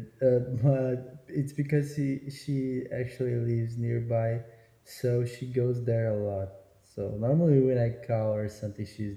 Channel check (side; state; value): both; identical; correlation 1.00